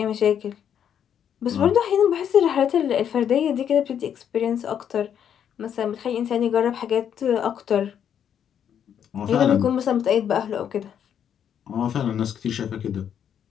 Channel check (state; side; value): quieter; right; 8.9 dB